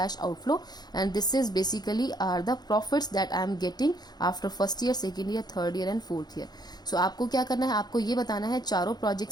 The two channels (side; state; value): right; late; 0.20 ms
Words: outflow and this is basically are the profits that I am getting after first year, second year, third year and fourth year. So आपको क्या करना है, आपको ये बताना है चारों